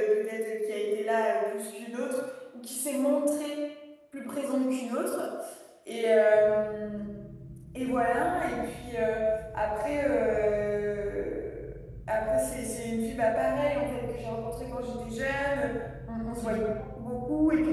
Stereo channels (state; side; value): identical; both; correlation 1.00